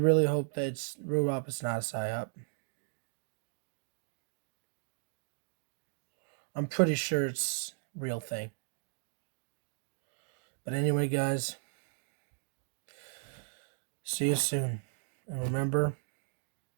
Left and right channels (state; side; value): silent; left; digital silence